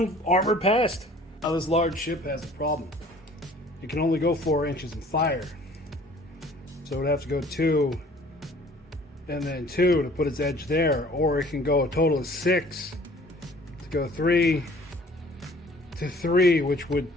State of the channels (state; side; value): normal; both; correlation 0.52